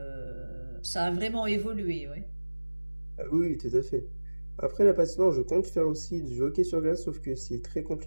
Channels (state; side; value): inverted; both; correlation -1.00